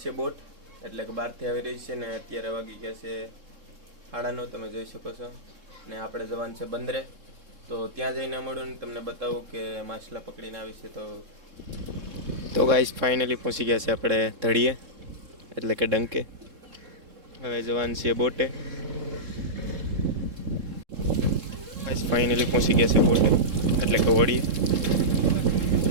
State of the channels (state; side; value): late; left; 3.7 ms